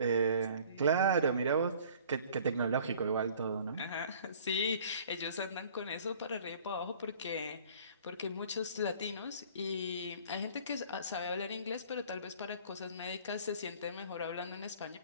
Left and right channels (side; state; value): both; inverted; correlation -0.51